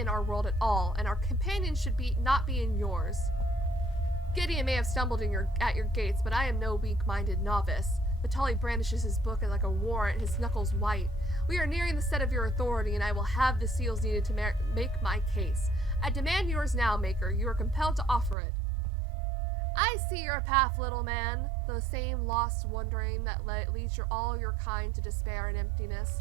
our world at all, and our companions should not be in yours. Gideon may have stumbled at your gates, but I am no weak-minded novice. Vitali brandishes his book like a warrant, his knuckles white. We are nearing the set of your authority, and I will have the seals needed to make my case. I demand yours now, Maker. You are compelled to offer it. I see your path, little man. The same lost wandering that leads all your kind to despair and emptiness.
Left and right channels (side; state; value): left; drops out; at 18.4 s